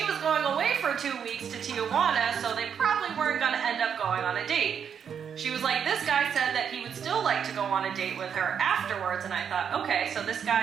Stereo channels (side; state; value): left; quieter; 7.6 dB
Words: was going away for 2 weeks to Tijuana, so they probably weren't going to end up going on a date. She was like, this guy said that he would still like to go on a date with her afterwards, and I thought, okay, so this